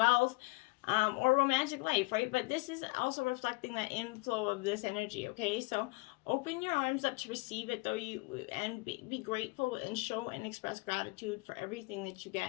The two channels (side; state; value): right; quieter; 26.5 dB